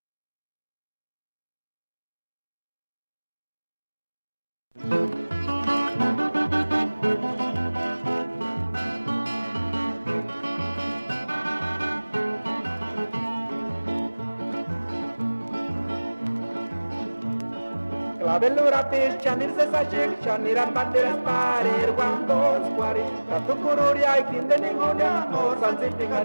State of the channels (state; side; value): inverted; both; correlation -1.00